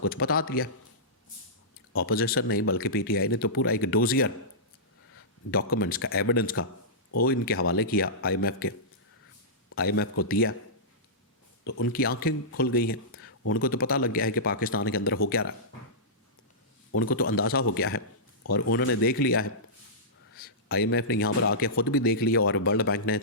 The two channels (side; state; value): both; normal; correlation -0.16